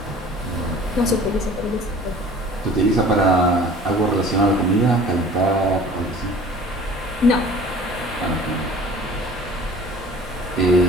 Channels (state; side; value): normal; both; correlation 0.46